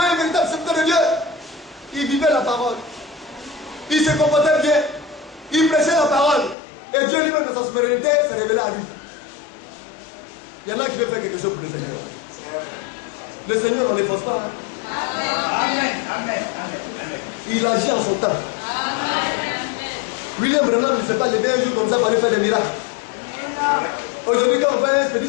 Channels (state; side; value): drops out; right; at 6.6 s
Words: un véritable serviteur de Dieu. Il vivait la parole. Il se comportait bien. Il prêchait la parole. Et Dieu lui-même de sa souveraineté s'est révélé à lui. Il y en a qui veulent faire quelque chose pour le Seigneur. Le Seigneur, on ne force pas. Hein? Amen. Amen. Amen. Il agit en son temps. William Branham ne s'est pas levé un jour comme ça pour aller faire des miracles. Aujourd'hui, quand on voit un petit